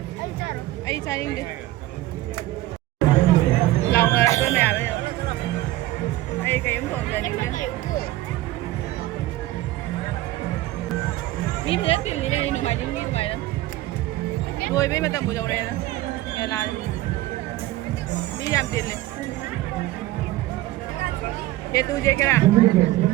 ai cha đi lòng là tôi mẹ bây giờ ai cái ấm thùng giờ những cái mi phải tiền gì đây nó mày những mi tụi mày đó rồi bây mà tầm buổi đầu này đó nhà là đi làm tiền này ये तू जे करा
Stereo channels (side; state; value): left; quieter; 16.5 dB